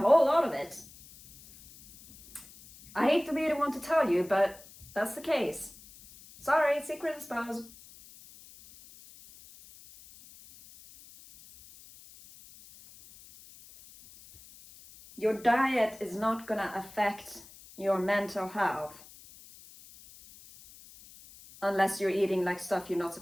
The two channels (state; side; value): noise; left; hiss, 21 dB below the sound